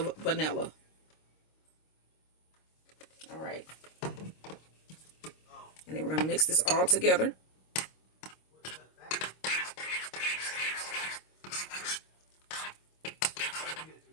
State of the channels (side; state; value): right; late; 26 ms